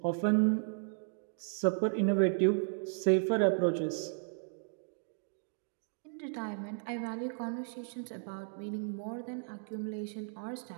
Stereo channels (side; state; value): left; silent; digital silence